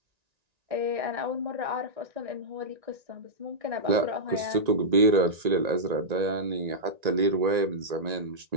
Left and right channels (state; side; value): late; left; 1.9 ms